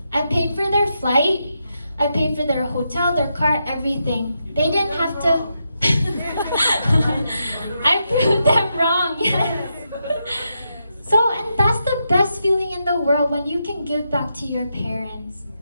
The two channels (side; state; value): both; inverted; correlation -0.84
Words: I paid for their flight. I paid for their hotel, their car, everything. They didn't have to... I proved them wrong, yes. So, and that's the best feeling in the world when you can give back to your parents.